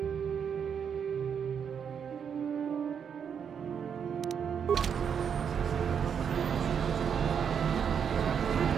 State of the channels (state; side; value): quieter; left; 7.4 dB